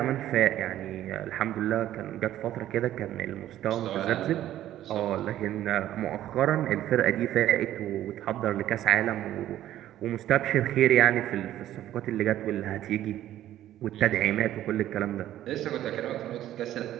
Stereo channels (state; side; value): quieter; left; 12.8 dB